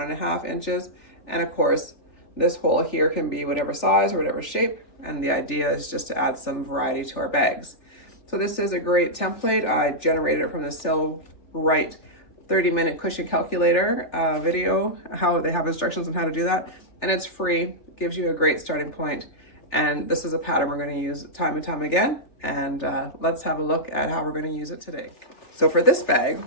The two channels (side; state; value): right; late; 3.4 ms